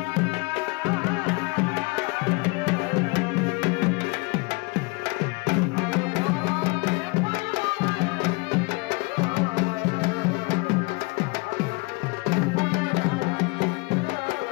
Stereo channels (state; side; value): quieter; right; 27.6 dB